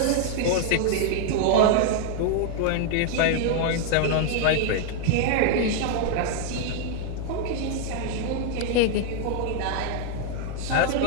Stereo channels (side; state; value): both; different; correlation 0.00